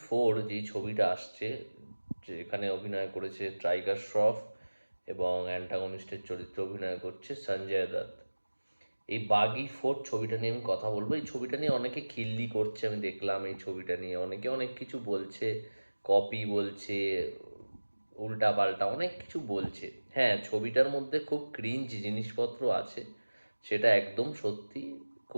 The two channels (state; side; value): inverted; both; correlation -1.00